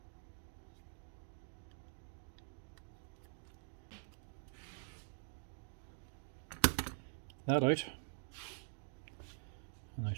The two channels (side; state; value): left; silent; digital silence